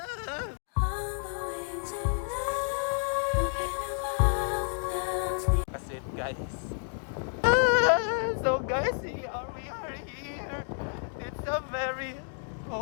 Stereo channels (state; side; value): silent; right; 58 dB below the other